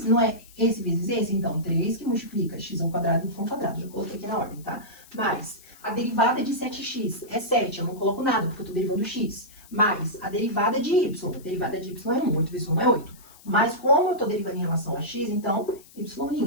não é esse vezes esse? Então, 3 que multiplica x ao quadrado, y ao quadrado. Já coloquei aqui na ordem, tá? Mais, a derivada de 7x é 7, eu não coloco nada, porque eu tô derivando x. Mais, a derivada de y. A derivada de y é 1, 8 vezes 1 é 8. Mas como eu estou derivando em relação a x, então,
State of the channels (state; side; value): noise; left; hiss, 23 dB below the sound